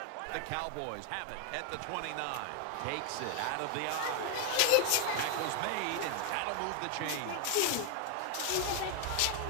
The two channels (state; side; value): different; both; correlation 0.00